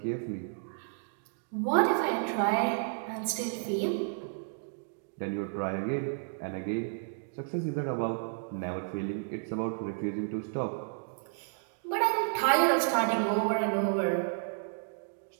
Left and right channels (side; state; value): left; silent; digital silence